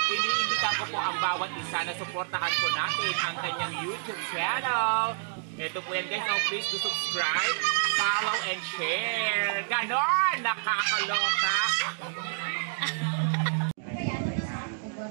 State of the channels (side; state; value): left; silent; digital silence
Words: Iniimbitan ko po ang bawat isa na suportahan po natin ang kanyang YouTube channel. Ito po yan guys, so please do subscribe, follow, and share. Ganon! Nakakaloka!